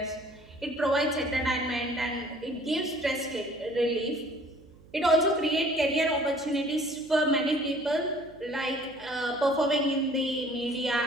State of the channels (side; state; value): right; noise; hum, 24 dB below the sound